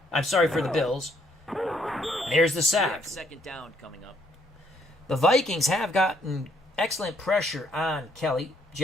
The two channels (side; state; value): both; normal; correlation 0.69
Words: the Bills. There's the We sack. have 2nd down coming up. The Vikings have gotten excellent pressure on Kelly.